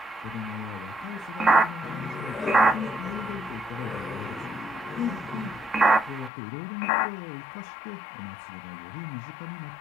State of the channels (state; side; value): drops out; right; at 6.3 s